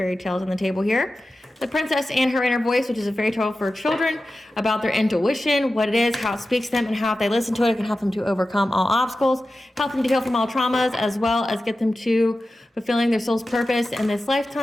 tales on the table here. The Princess and Her Inner Voice, which is a fairy tale for children about their intuition, what it is, how it speaks to them, and how if they listen to it, it can help them to overcome all obstacles, help them to heal from all traumas, as well as get them to fulfilling their soul's purpose in this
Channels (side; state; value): both; normal; correlation 0.94